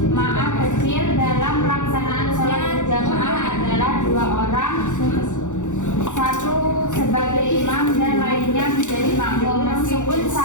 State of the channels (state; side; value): late; right; 0.85 ms